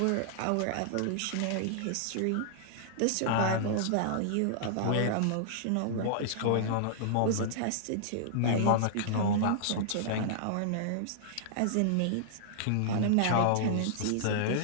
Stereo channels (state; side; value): different; both; correlation -0.01